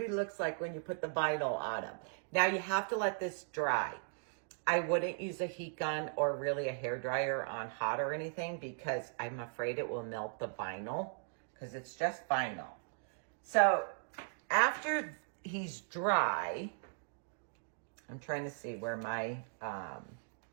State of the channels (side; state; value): left; silent; digital silence